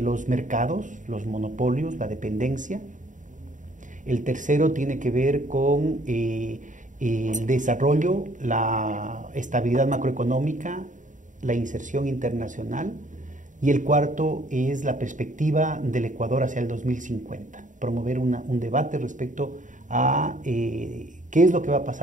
los mercados, los monopolios, la dependencia. El tercero tiene que ver con el desarrollo, la estabilidad macroeconómica, la inserción internacional. Y el cuarto es la perspectiva del Ecuador hacia el 2050, promover un debate respecto a qué es lo que va a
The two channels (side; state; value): left; late; 0.37 ms